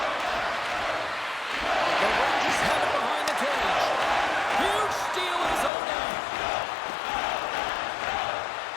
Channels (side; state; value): right; drops out; at 5.7 s